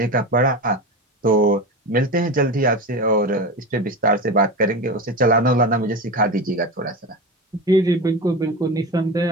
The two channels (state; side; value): normal; both; correlation 0.24